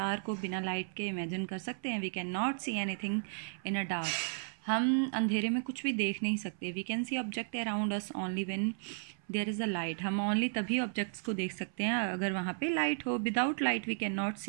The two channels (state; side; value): silent; left; 55 dB below the other